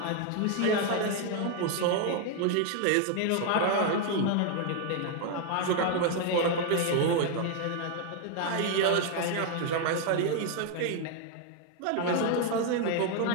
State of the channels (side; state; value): both; different; correlation 0.00